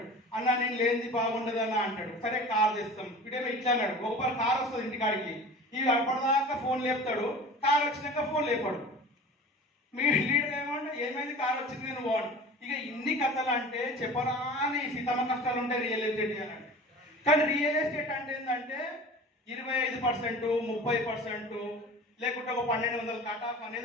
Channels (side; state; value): both; normal; correlation 0.39